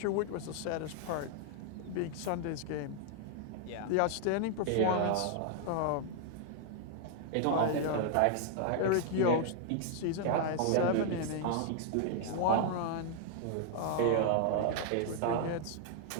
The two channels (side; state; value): both; different; correlation 0.00